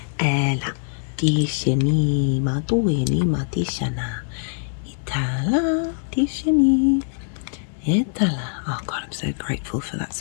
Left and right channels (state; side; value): silent; right; 58 dB below the other